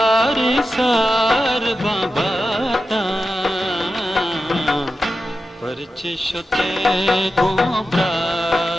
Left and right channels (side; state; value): both; normal; correlation 0.91